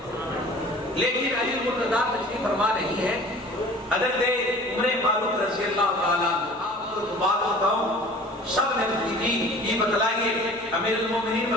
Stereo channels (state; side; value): normal; both; correlation 0.45